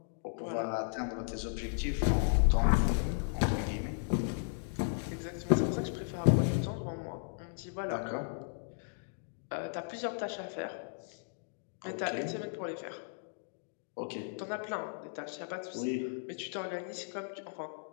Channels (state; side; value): silent; right; digital silence